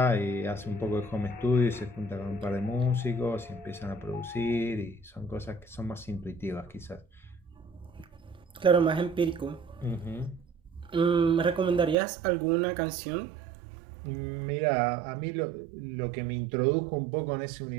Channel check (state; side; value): drops out; left; at 12.0 s